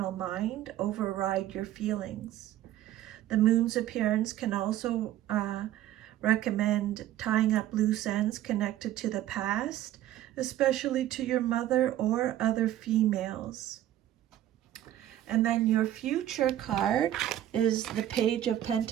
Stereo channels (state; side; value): quieter; left; 12.8 dB